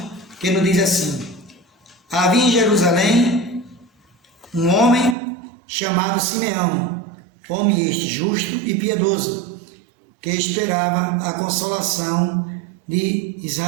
que nos diz assim: Havia em Jerusalém um homem chamado Simeão, homem este justo e piedoso, que esperava a consolação de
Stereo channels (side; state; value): left; drops out; at 5.2 s